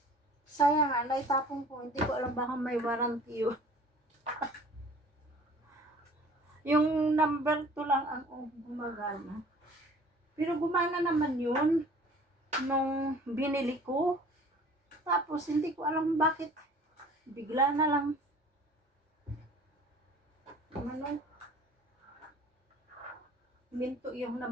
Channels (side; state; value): both; normal; correlation 0.49